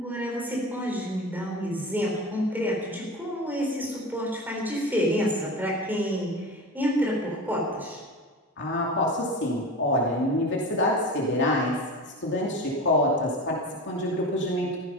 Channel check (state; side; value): normal; both; correlation 0.31